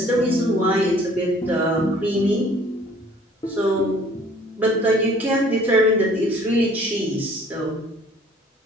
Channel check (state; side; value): normal; both; correlation 0.55